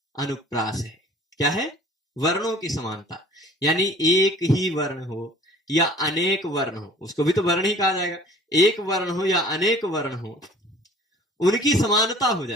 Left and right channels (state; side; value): normal; both; correlation 0.49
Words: अनुप्रास है। क्या है? वर्णों की समानता, यानी एक ही वर्ण हो या अनेक वर्ण हो, उसको भी तो वर्ण ही कहा जाएगा। एक वर्ण हो या अनेक वर्ण हो, उनकी समानता हो